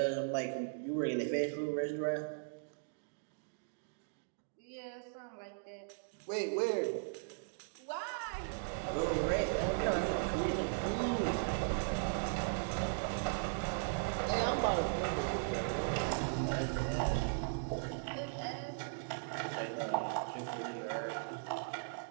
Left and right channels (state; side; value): silent; left; digital silence